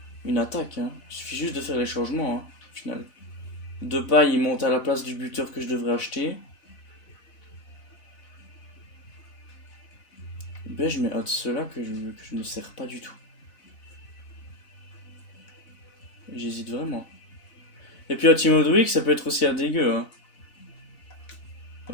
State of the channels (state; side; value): late; right; 4.0 ms